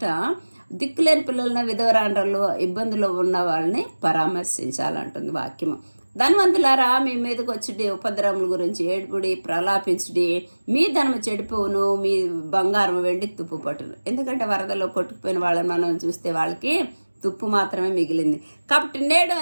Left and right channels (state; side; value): inverted; both; correlation -1.00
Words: దిక్కులేని పిల్లలను, విధవరాండ్రలు, ఇబ్బందులు ఉన్న వాళ్ళని పరామర్శించాలంటుంది వాక్యము. ధనవంతులారా, మీ మీదకి వచ్చి ఉపద్రవముల గురించి ఏడుపుడి, ప్రలాపించుడి. మీ ధనము చెడిపోవును, మీ బంగారం వెండి తుప్పు పట్టును. ఎందుకంటే వరదలో కొట్టుకుపోయిన వాళ్ళని మనం చూస్తే వాళ్ళకి తుప్పు మాత్రమే మిగిలింది. కాబట్టి నేడు